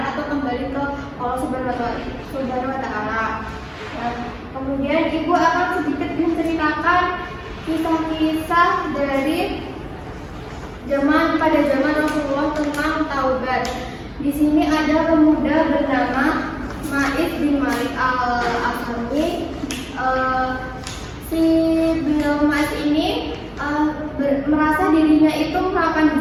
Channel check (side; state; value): both; identical; correlation 1.00